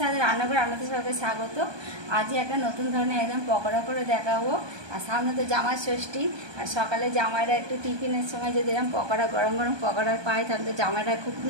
रान्नाघर रान्नाते सबके स्वागत। आज एक नतून धरनेर एकदम पकोड़ा करे देखाबो। और सामने तो जामाई षष्ठी और सकाले जामाईरा एकटु टिफिनेर समय जो एरकम पकोड़ा गरम गरम पकोड़ा पाय ताहले जामाईरा खूब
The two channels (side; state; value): left; late; 1.2 ms